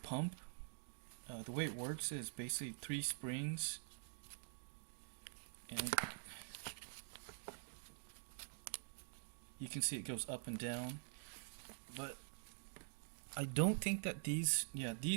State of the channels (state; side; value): silent; left; digital silence